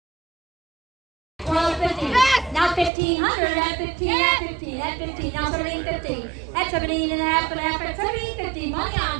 Now 1,500 at 15, at 15, at 15, now 1,750, at 17 and a half, at 1,750, money on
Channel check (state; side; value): drops out; left; at 2.9 s